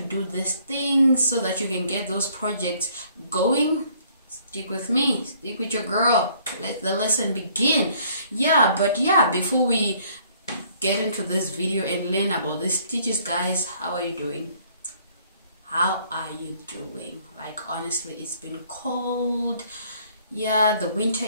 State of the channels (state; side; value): inverted; both; correlation -0.61